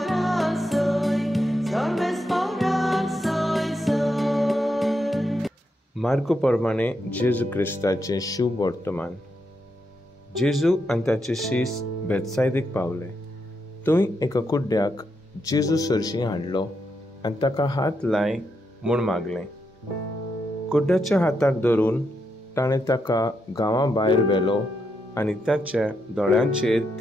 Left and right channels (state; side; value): normal; both; correlation 0.82